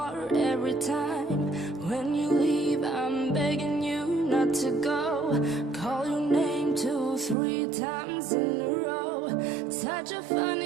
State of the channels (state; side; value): drops out; left; at 7.4 s